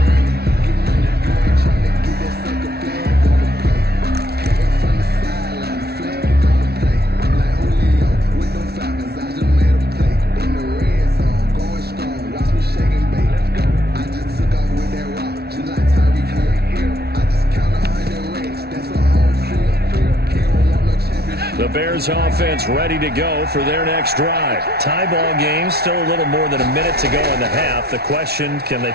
The Bears offense ready to go for their next drive. Tie ball game, still a little more than a minute to go in the half. The question, can they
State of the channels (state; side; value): late; left; 0.46 ms